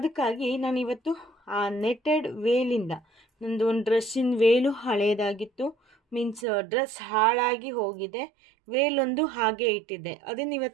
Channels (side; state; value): left; drops out; at 6.5 s